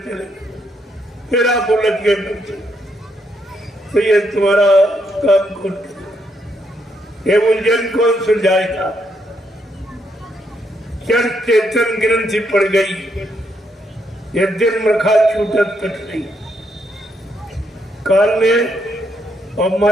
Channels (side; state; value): both; normal; correlation 0.76